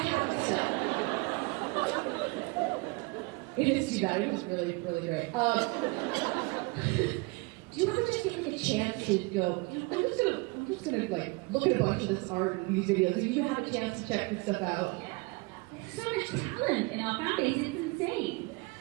it still. It is too bad. It was really, really great. Do you ever just get a chance to go, I'm just gonna look at a bunch of this art and these videos, and you have a chance to check this stuff out? Yeah. There's so much talent in our fan base. It's insane.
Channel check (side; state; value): left; quieter; 26.8 dB